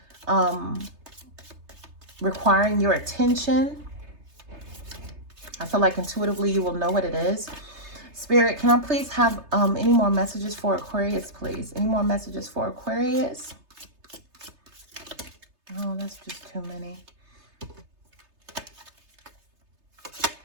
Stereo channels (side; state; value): left; late; 3.3 ms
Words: requiring your attention. I feel like intuitively you will know what it is. Spirit, can I please have any more messages for Aquarius, please? Any more messages for Aquarius? Oh, that's just too many.